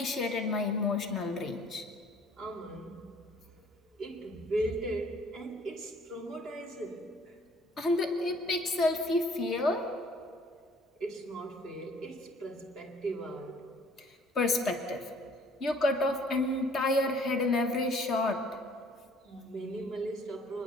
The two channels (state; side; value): normal; both; correlation 0.56